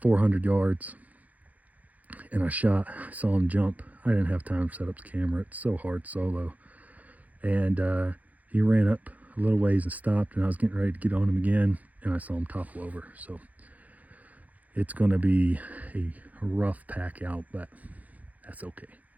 400 yards, and I saw him jump. I didn't have time to set up the camera. It's so hard solo. And he ran up a little ways and stopped, and I was getting ready to get on him again, and I saw him topple over. So it's going to be a rough pack out, but that's okay.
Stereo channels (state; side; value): late; left; 0.076 ms